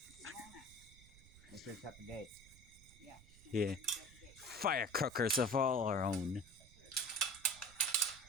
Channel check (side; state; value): right; noise; rumble, 21 dB below the sound